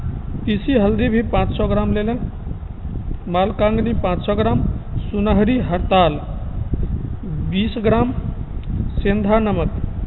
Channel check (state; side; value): identical; both; correlation 1.00